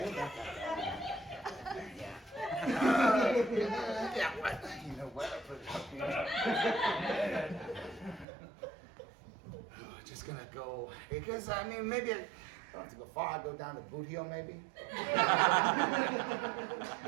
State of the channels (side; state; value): left; drops out; at 8.2 s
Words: Yeah, what? You know what? I put it up here. Just gonna go, because I mean, maybe I don't have to go far. I'll go down to Boot Heel, maybe.